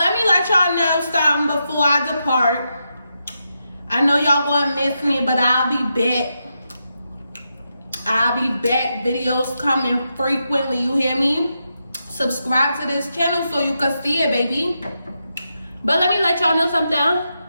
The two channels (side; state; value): both; inverted; correlation -0.85